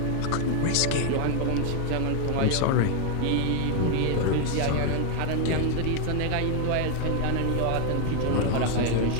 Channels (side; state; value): both; different; correlation 0.00